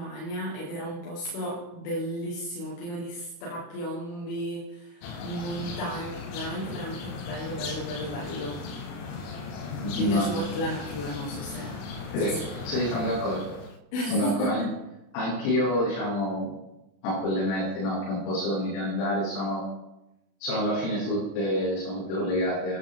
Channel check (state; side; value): late; right; 35 ms